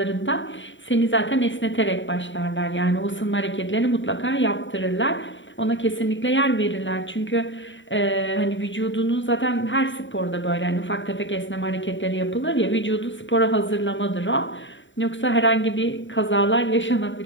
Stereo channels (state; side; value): late; right; 0.55 ms